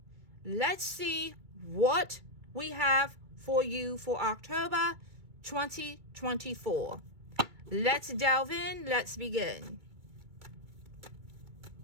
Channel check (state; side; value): late; left; 2.2 ms